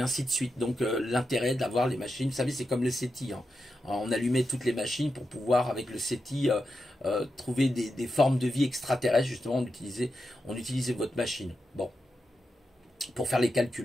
de suite. Donc, l'intérêt d'avoir les machines, vous savez, c'est comme le SETI. Hein. On allumait toutes les machines pour pouvoir, avec le SETI, trouver des formes de vie extraterrestres. Justement, on utilisait votre machine. Bon, pour faire les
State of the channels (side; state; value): both; normal; correlation 0.88